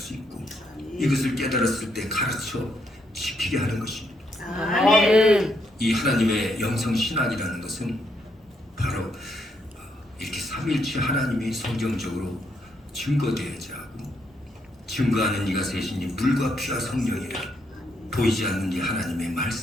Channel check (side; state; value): both; normal; correlation 0.76